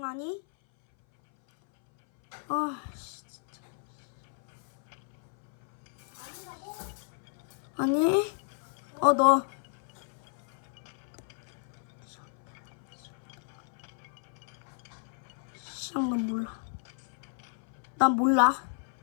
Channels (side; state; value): right; silent; 56 dB below the other